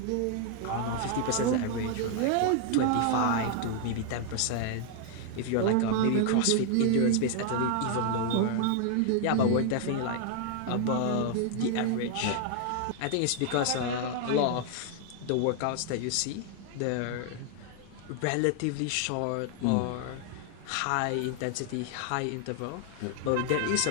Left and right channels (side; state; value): both; different; correlation 0.00